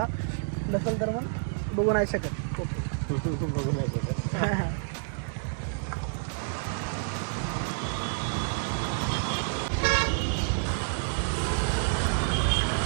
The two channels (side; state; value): left; silent; digital silence